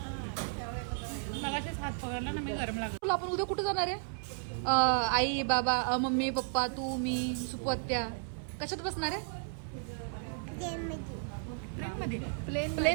हात पकडला ना मी. गरम लागला. आपण उद्या कुठे जाणार आहे? आई बाबा मम्मी पप्पा तू मी सुपू आत्या कशात बसणार आहे? प्लेन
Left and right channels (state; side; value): silent; left; 55 dB below the other